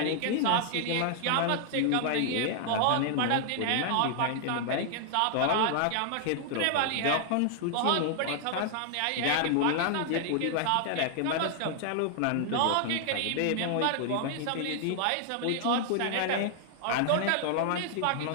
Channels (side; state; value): both; different; correlation 0.00